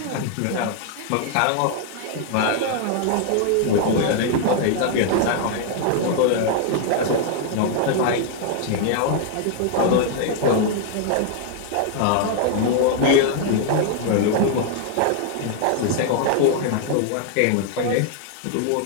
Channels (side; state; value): both; different; correlation 0.00